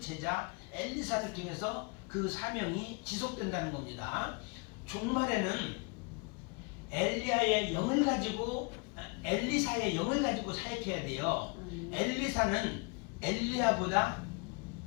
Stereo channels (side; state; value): right; quieter; 30.9 dB